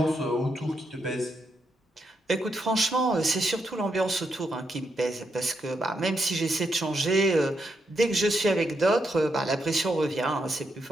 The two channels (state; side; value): normal; both; correlation 0.80